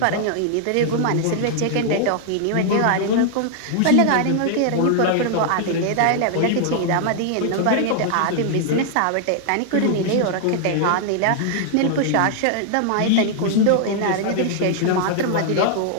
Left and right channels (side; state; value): both; different; correlation -0.01